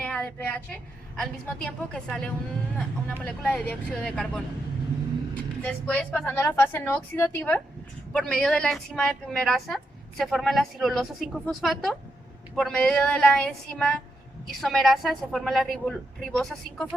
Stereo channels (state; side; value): normal; both; correlation 0.83